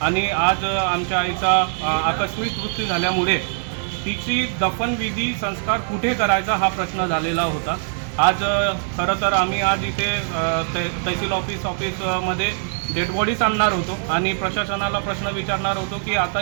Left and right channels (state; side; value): silent; left; 64 dB below the other